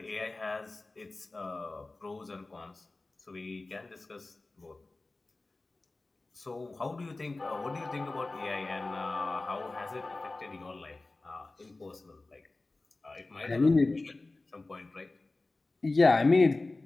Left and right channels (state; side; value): quieter; right; 3.2 dB